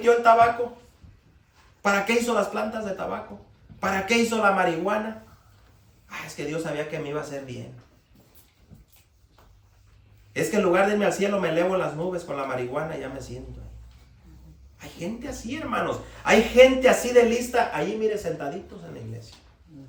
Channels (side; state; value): both; identical; correlation 1.00